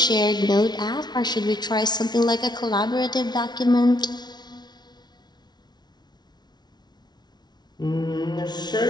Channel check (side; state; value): right; late; 0.20 ms